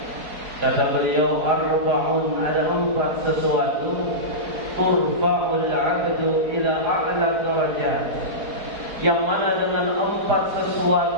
kata beliau, arba'un, ada 4 sesuatu, turfa'ul 'abdu ila a'la darajat, yang mana dengan 4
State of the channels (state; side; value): late; left; 4.8 ms